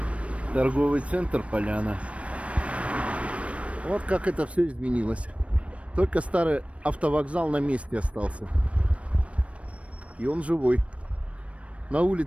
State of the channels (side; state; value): left; late; 0.063 ms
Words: Торговый центр Поляна. Вот как это все изменилось. Только старый автовокзал на месте остался. И он живой. На